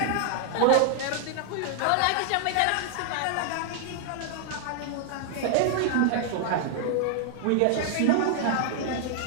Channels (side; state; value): both; different; correlation -0.01